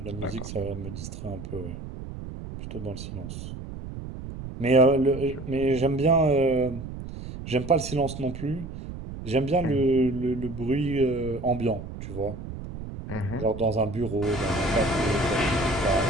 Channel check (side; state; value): right; noise; rumble, 10 dB below the sound